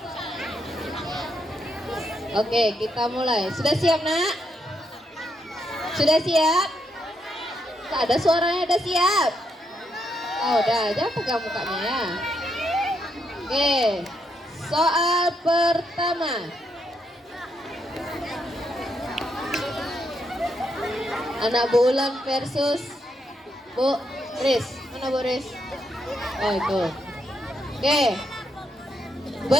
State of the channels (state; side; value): normal; both; correlation 0.78